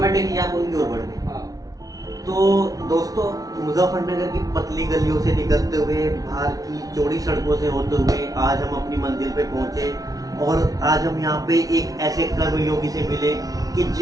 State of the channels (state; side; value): late; left; 0.18 ms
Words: आप उनकी ओर बढ़ गए। हाँ। तो दोस्तों, मुजफ्फरनगर की पतली गलियों से निकलते हुए, बाहर की चौड़ी सड़कों से होते हुए आज हम अपनी मंजिल पे पहुंचे, और आज हम यहाँ पे एक ऐसे कर्मयोगी से मिले कि